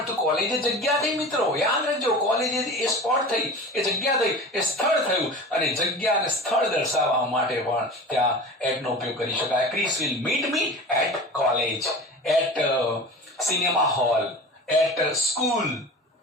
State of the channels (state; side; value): normal; both; correlation 0.34